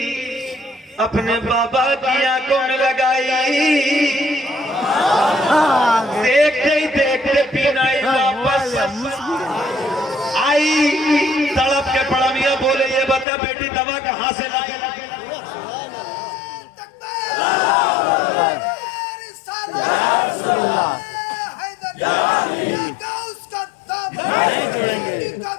اپنے بابا کی آنکھوں میں لگائی. دیکھتے ہی دیکھتے پینائی واپس آئی. تڑپ کے پڑا میاں بولے یہ بتا بیٹی دوا کہاں سے لائی؟ نہیں چھوڑیں گے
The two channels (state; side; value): drops out; right; at 13.2 s